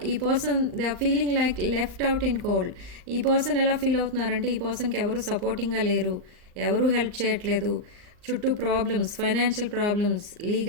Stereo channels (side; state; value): left; late; 39 ms